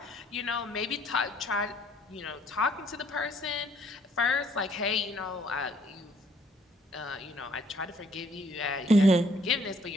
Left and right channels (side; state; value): both; normal; correlation 0.64